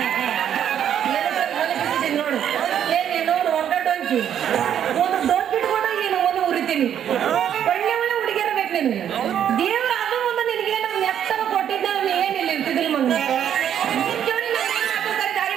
ನೋಡು. ನೋಡು ಒಗ್ಗಟ್ಟೊಂಚಿ ಒಂದು ದೊಡ್ಡ ಬಿಟ್ಕೊಂಡು ನೀನು ಒಂದು ಉರಿತೀನಿ. ಒಳ್ಳೆ ಒಳ್ಳೆ ಹುಡುಗಿಯರ ಬೇಕು ನಿನಗೆ. ದೇವ್ರ ಅದು ಒಂದು ನಿನಗೆ ನಮ್ಮ ನೆತ್ತನ ಕೊಟ್ಟಿದ್ದ ಏನಿಲ್ಲ ಇರ್ತಿದ್ದಿಲ್ಲ ಮಗ.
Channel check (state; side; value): quieter; left; 9.6 dB